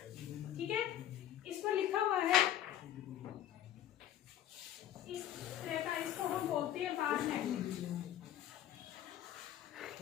ठीक है। इस पर लिखा हुआ है इस तरह का, इसको हम बोलते हैं बार मैग्नेट।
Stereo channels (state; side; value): quieter; right; 11.6 dB